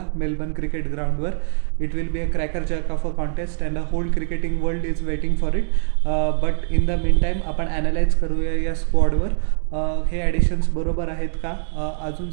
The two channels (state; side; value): silent; left; digital silence